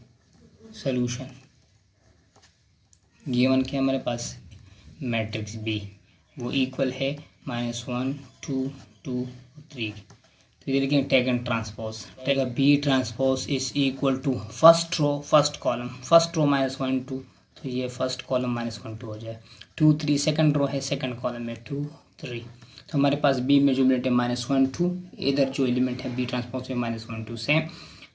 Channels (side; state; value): both; identical; correlation 1.00